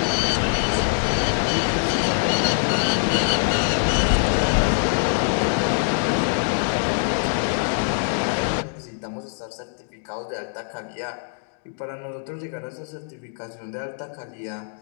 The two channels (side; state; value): right; silent; digital silence